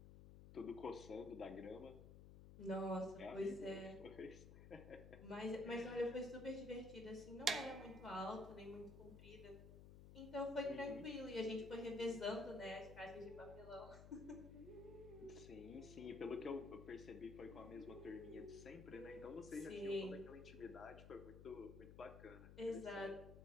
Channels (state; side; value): noise; left; hum, 13 dB below the sound